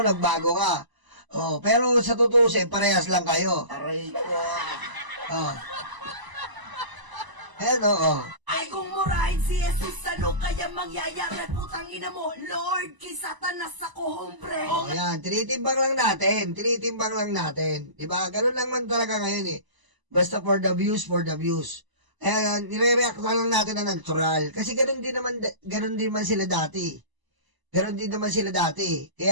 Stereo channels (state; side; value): late; left; 1.0 ms